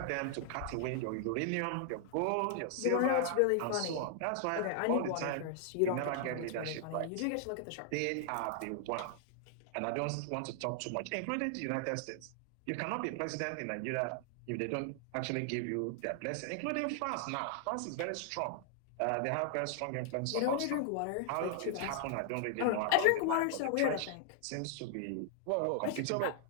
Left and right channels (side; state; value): both; different; correlation 0.00